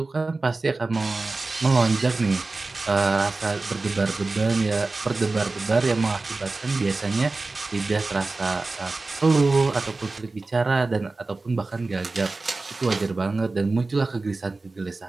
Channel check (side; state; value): left; quieter; 3.5 dB